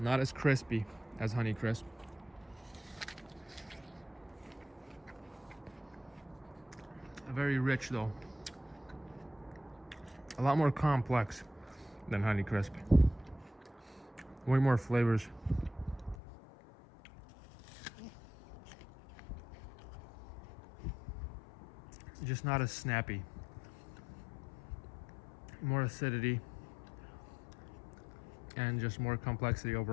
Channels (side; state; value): right; drops out; at 16.2 s